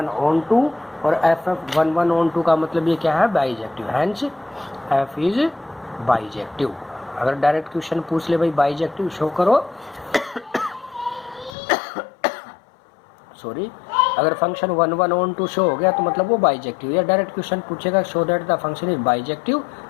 on 2 और f 1 1 ऑन 2 का मतलब ये क्या है, bijective, hence f is bijective. अगर डायरेक्ट क्वेश्चन पूछ ले भाई बाइजेक्टिव शो करो सॉरी, अगर फंक्शन 1 1 ऑन 2 शो हो गया तो मतलब वो बाइजेक्टिव, या डायरेक्ट क्वेश्चन पूछेगा show that the function is bijective,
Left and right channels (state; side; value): drops out; right; at 11.5 s